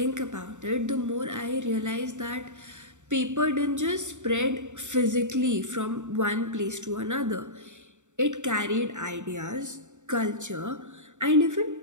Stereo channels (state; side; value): late; left; 0.85 ms